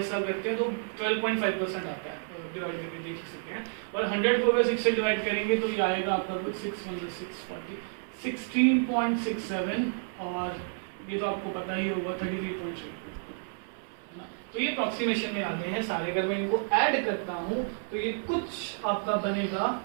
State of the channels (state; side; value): silent; left; 56 dB below the other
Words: करते हैं तो 12.5% आता है, डिवाइड करके देख सकते हैं। और 100 को अगर 6 से डिवाइड करेंगे तो ये आएगा आपका कुछ 6 16.67, और ये तो आपको पता ही होगा 33.3, तो ये अप्रोक्सीमेशन में आ गए हैं सारे। अगर मैं इनको ऐड करता हूं तो ये कुछ आपका बनेगा